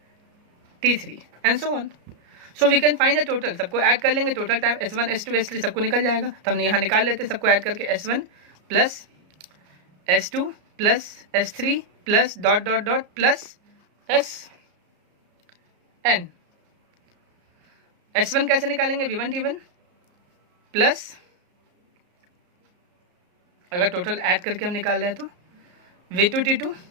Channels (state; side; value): late; left; 33 ms